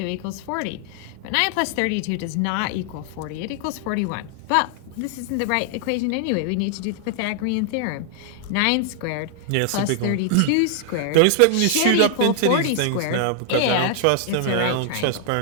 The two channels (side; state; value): both; different; correlation 0.00